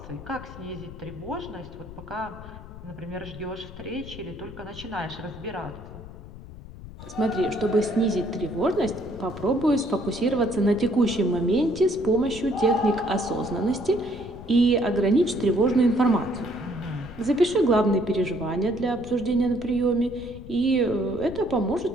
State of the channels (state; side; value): noise; left; rumble, 15 dB below the sound